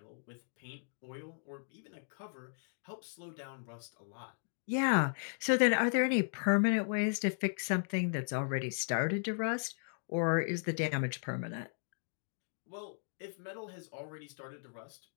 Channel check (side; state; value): right; silent; digital silence